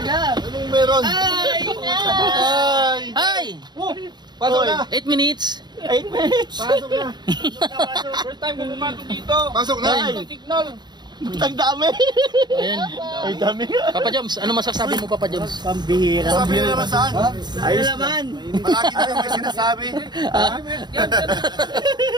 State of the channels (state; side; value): late; left; 0.21 ms